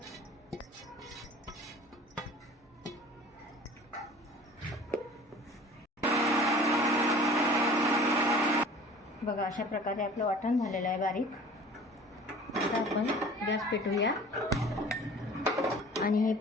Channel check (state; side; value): normal; both; correlation 0.45